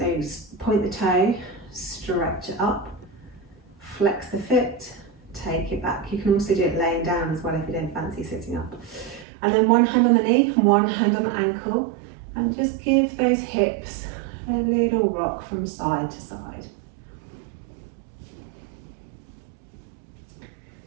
point the toe, stretch it up. Flex the foot, take it back. You can also do it laying down as well if you don't fancy sitting up. And then one hand on the knee, one hand on the ankle, and just give those hips a little rock from side to side.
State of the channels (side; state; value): left; drops out; at 9.2 s